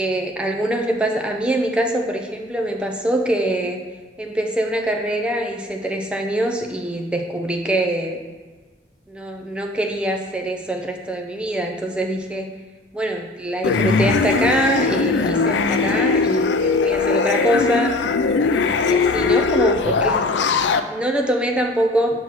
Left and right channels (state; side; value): normal; both; correlation 0.45